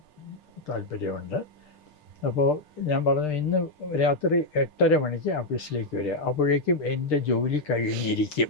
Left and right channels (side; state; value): right; late; 6.6 ms